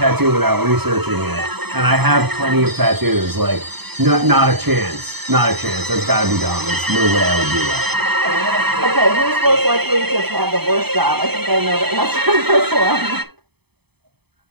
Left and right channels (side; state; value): left; late; 0.98 ms